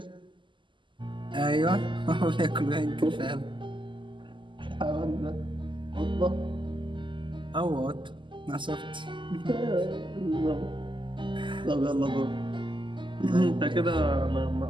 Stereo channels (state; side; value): late; left; 0.24 ms